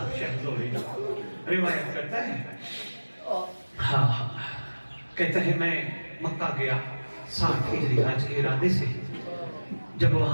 شہزوری روایت کرتا ہے، ہاں کہتا ہے میں مکہ گیا 60 ہجری حج کے ارادے سے، جب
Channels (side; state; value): both; inverted; correlation -1.00